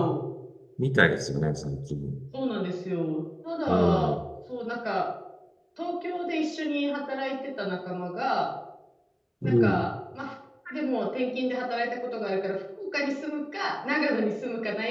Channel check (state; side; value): identical; both; correlation 1.00